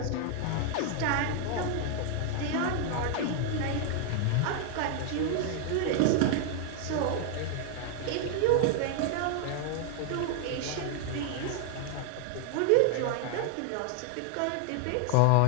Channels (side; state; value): both; different; correlation 0.00